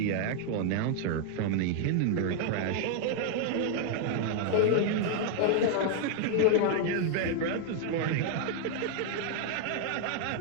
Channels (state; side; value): different; both; correlation 0.00